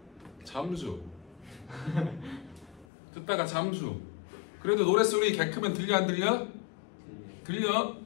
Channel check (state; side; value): drops out; right; at 2.9 s